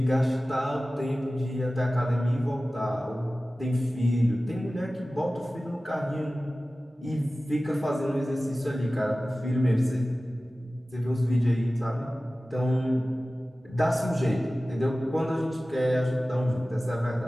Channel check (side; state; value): both; normal; correlation 0.96